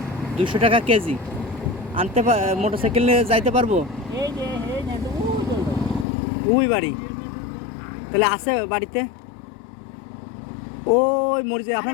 200 টাকা কেজি। আনতে মোটরসাইকেল নিয়ে যাইতে পারবো? এই যে এই যে ওই বাড়ি, তাহলে আছে বাড়িতে? ওই মরিচে।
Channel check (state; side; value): drops out; right; at 6.1 s